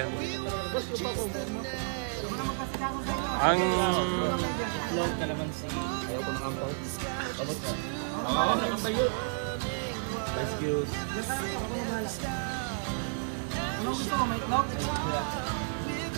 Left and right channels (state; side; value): silent; left; 57 dB below the other